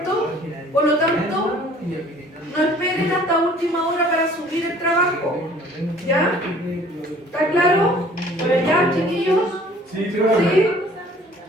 Por lo tanto, no esperen hasta última hora para subir el trabajo. ¿Ya? ¿Está claro? ¿Por allá, chiquillos? Sí, ¿Sí?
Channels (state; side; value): normal; both; correlation 0.53